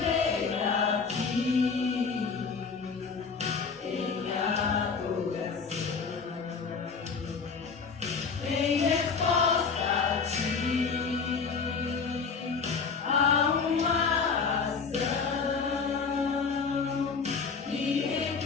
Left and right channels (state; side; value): quieter; right; 5.3 dB